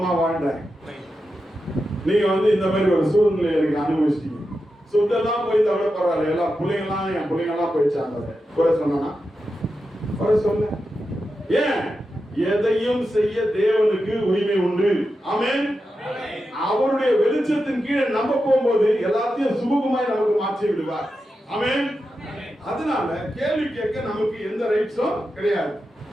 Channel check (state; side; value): normal; both; correlation 0.89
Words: வாழ்ந்தேன், நீங்க வந்து இந்த மாதிரி ஒரு சூழ்நிலை எனக்கு அனுபவிச்சிட்டீங்க. சொத்தெல்லாம் போய் தவிர பரவாயில்ல, எல்லாம் பிள்ளைங்கெல்லாம் என் பிள்ளைங்கெல்லாம் போயிடுச்சாங்க. குறை சொன்னா குறை சொல்ல. ஏன்? எதையும் செய்ய தேவனுக்கு உரிமை உண்டு. ஆமென். அவருடைய வெளிச்சத்தின் கீழே நம்ம போகும்போது எல்லாத்தையும் சுமூகமாய் நமக்கு மாற்றி விடுவார். ஆமென். அதனால கேள்வி கேட்க நமக்கு எந்த ரைட்ஸும் கிடையாது.